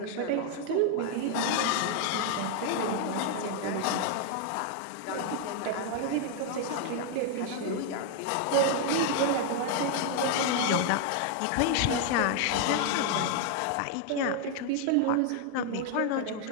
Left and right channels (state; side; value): different; both; correlation 0.00